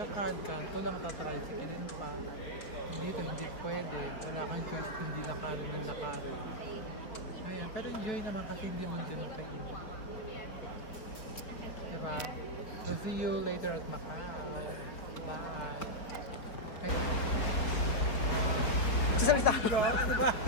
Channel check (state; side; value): late; right; 4.9 ms